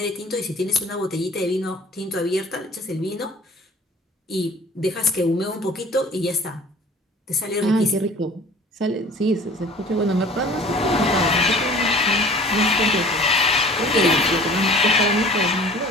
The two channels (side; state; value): both; normal; correlation 0.47